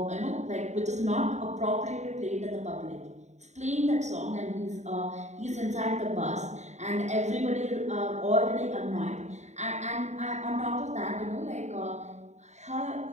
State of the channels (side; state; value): left; late; 0.33 ms